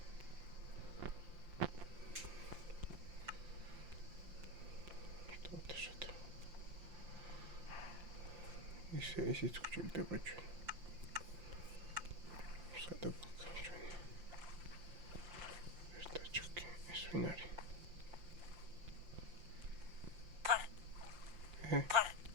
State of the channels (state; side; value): late; left; 5.7 ms